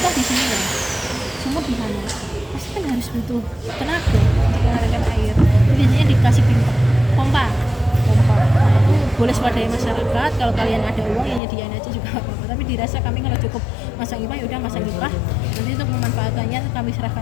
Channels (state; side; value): drops out; right; at 11.4 s